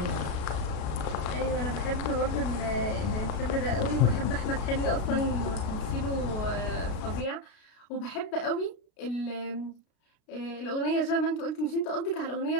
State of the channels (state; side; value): late; right; 33 ms